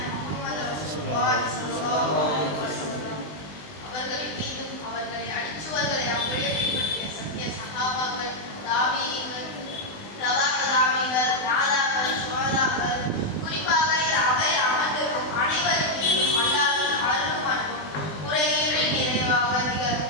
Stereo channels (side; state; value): right; late; 20 ms